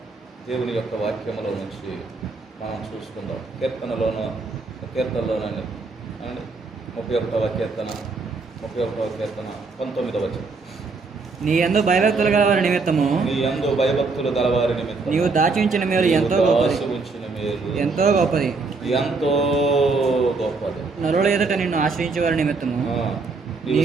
దేవుని యొక్క వాక్యములో నుంచి మనం చూసుకుందాం. కీర్తనలోనండి అండ్ 31వ కీర్తన 19వ వచనం. నీ యందు భయభక్తులు గలవారి నిమిత్తము నీవు దాచి ఉంచిన మేలు ఎంతో గొప్పది. నరుల ఎదుట నిన్ను ఆశ్రయించే వారి నిమిత్తము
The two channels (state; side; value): quieter; left; 4.1 dB